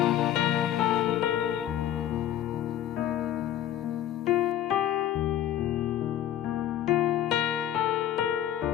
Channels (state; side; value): quieter; right; 11.4 dB